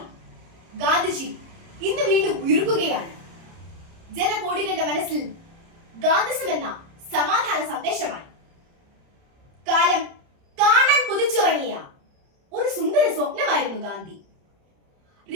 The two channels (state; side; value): late; left; 30 ms